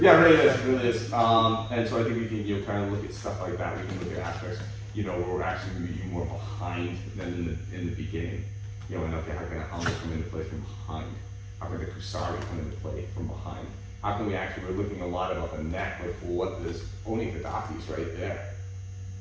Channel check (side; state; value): both; identical; correlation 1.00